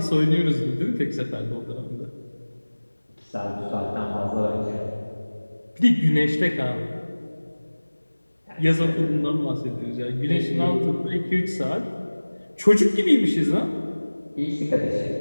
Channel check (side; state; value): both; inverted; correlation -1.00